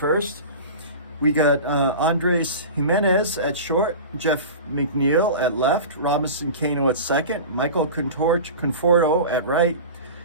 we got Andres Jimenez at short, Jeff McNeil at left, Robinson Cano at second, Michael Conforto at right,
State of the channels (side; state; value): both; inverted; correlation -0.33